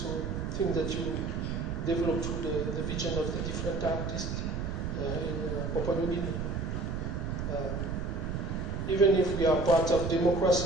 thing that you develop through the vision of the different artists in Papua New Guinea. Even if we are part of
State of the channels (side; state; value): right; noise; rumble, 3 dB below the sound